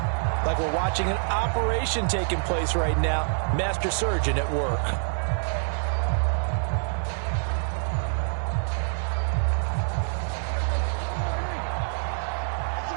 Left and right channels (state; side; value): silent; left; digital silence